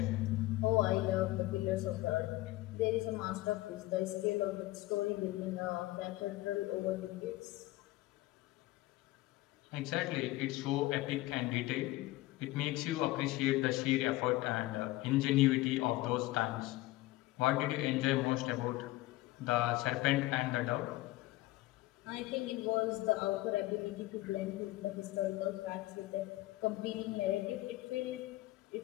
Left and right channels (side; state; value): right; quieter; 18.4 dB